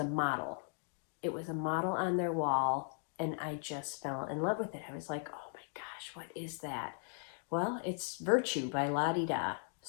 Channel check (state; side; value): silent; right; 53 dB below the other